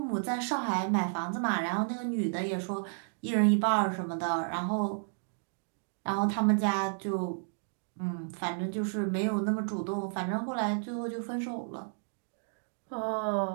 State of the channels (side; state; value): left; silent; digital silence